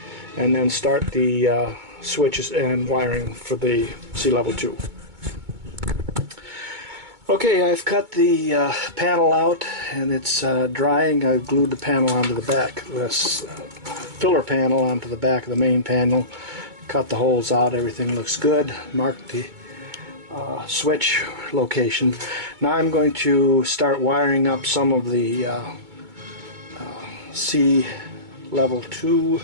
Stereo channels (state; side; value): late; left; 2.2 ms